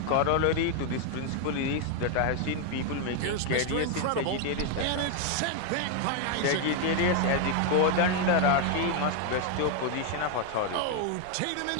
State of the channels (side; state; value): both; different; correlation 0.01